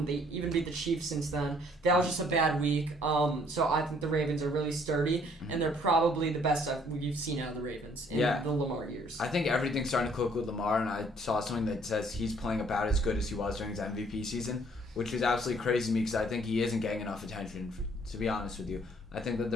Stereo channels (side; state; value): both; normal; correlation 0.62